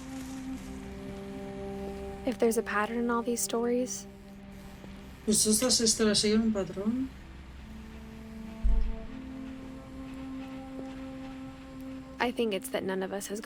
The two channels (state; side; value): identical; both; correlation 1.00